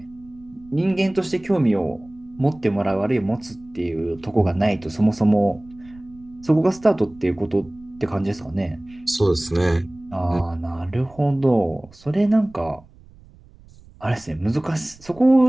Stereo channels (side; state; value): right; noise; rumble, 24 dB below the sound